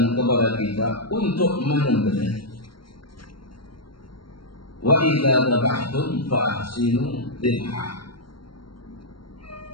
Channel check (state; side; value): late; right; 0.73 ms